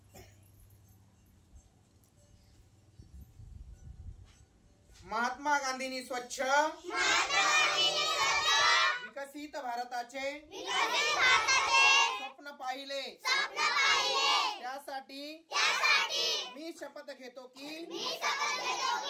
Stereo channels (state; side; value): identical; both; correlation 1.00